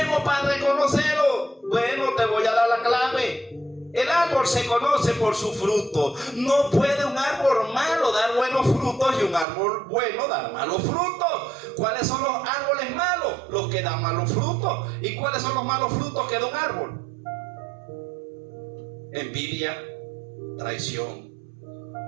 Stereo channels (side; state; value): left; drops out; at 9.5 s